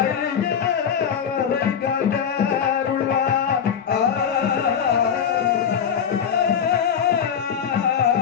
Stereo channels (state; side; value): quieter; right; 7.8 dB